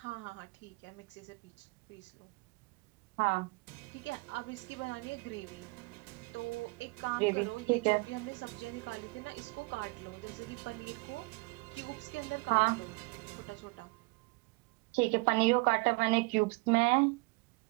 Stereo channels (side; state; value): left; quieter; 27.7 dB